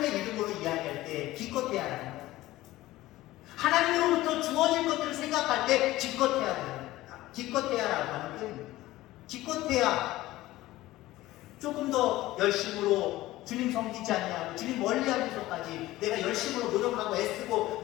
이름으로 이야기할 때 기껏해야라는 거예요. 하나님으로부터 주어질 것들을 생각할 때 기껏해야라고 하는 표현입니다. 기껏해야 조금 더 열심으로 주님 섬기지 않냐고 주님 멀리하면서까지 내가 열심으로 노력하고 애쓰고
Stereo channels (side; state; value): right; quieter; 16.9 dB